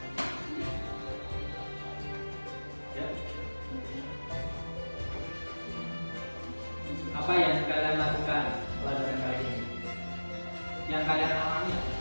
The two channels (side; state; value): both; inverted; correlation -1.00